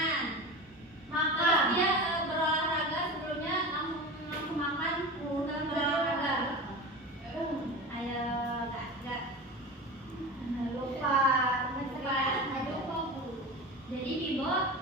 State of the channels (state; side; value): normal; both; correlation 0.29